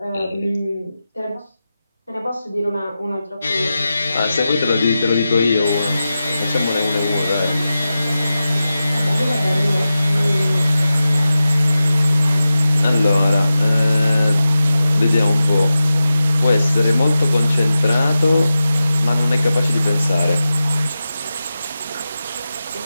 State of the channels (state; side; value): inverted; both; correlation -0.93